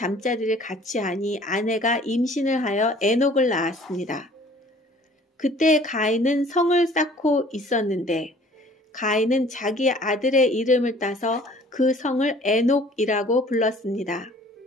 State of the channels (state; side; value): normal; both; correlation 0.52